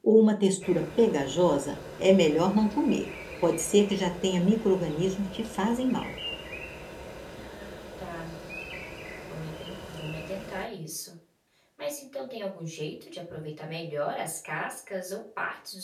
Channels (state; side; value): identical; both; correlation 1.00